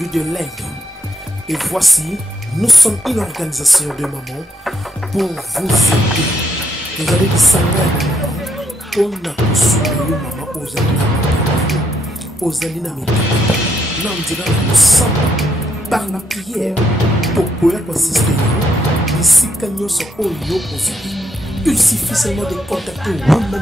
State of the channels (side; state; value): both; normal; correlation 0.75